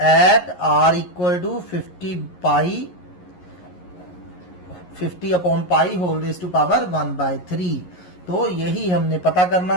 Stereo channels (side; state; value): right; late; 11 ms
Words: at r equal to 50/π⁻⁴ तो यही हमने पता करना